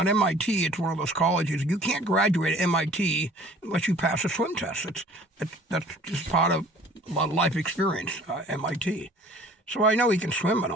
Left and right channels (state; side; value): normal; both; correlation 0.50